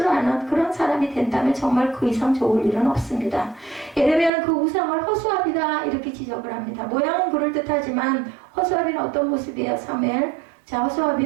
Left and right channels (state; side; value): drops out; left; at 4.3 s